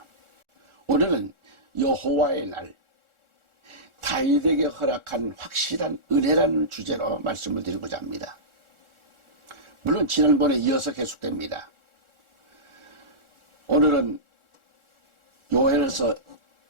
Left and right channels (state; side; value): late; left; 1.4 ms